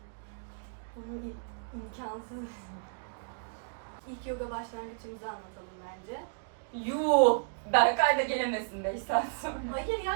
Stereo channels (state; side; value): silent; left; digital silence